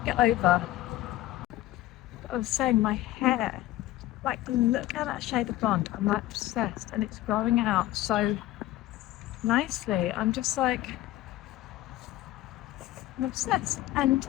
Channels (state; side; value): quieter; right; 15.4 dB